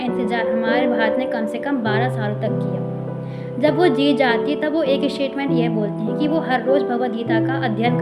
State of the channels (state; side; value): identical; both; correlation 1.00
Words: हमारे भारत ने कम से कम 12 सालों तक किया। जब वो जीत जाती है तब वो एक स्टेटमेंट ये बोलती हैं कि वो हर रोज़ भगवद गीता का अध्ययन